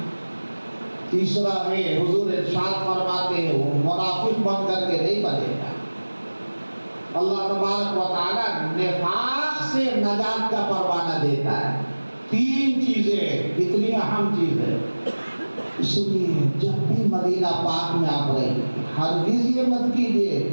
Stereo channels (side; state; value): both; inverted; correlation -1.00